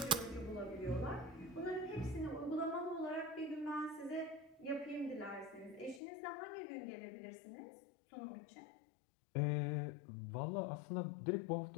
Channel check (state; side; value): drops out; right; at 6.0 s